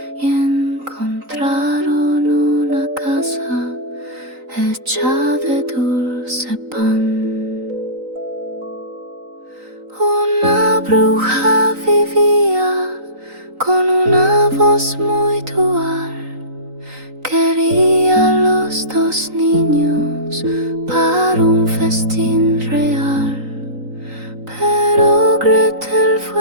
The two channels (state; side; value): late; left; 3.9 ms